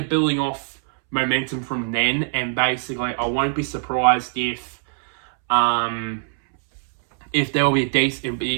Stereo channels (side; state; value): left; silent; 64 dB below the other